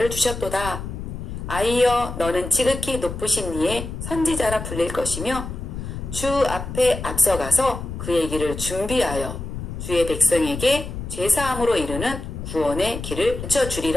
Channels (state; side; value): noise; left; rumble, 8 dB below the sound